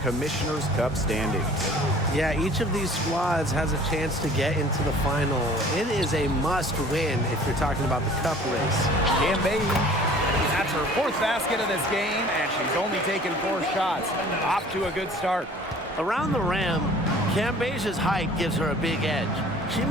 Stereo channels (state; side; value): normal; both; correlation 0.49